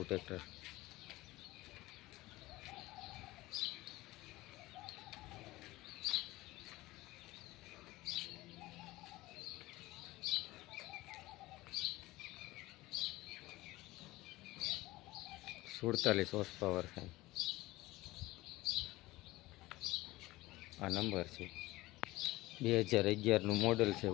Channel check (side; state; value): right; quieter; 19.0 dB